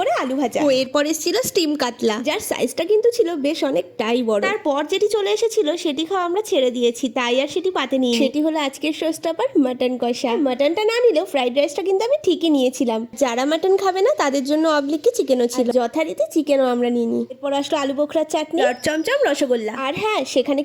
আলু ভাজা। ও এরপর এসেছিল স্টিম কাতলা, যার সাইজটা কিন্তু ছিল বেশ অনেকটাই বড়। তারপর যেটি চলে এসেছিল সেটি খাওয়া আমরা ছেড়ে দিয়েছি, তাই আর সেটি পাতে নিই। সেটি হলো আজকের শোস্টপার মাটন কষা। মাটনটা না নিলেও ফ্রাইড রাইসটা কিন্তু আমি ঠিকই নিয়েছিলাম। যারা মাটন খাবে না তাদের জন্য অবলিকি চিকেনও ছিল, যথারীতি চিকেনও আমরা নিইনি। এরপর আসলো আলু বোখরার চাটনি, চমচম, রসগোল্লা। আর হ্যাঁ, সেখানে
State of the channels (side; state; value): both; identical; correlation 1.00